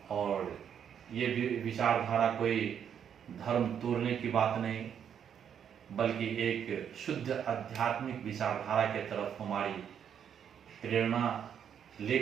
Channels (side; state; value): left; quieter; 8.4 dB